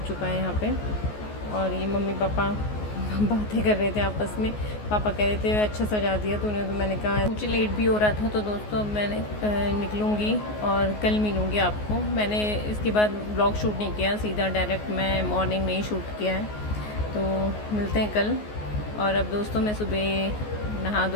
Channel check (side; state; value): right; late; 14 ms